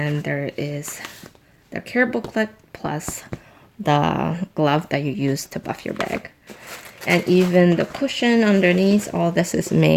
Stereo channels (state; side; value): identical; both; correlation 1.00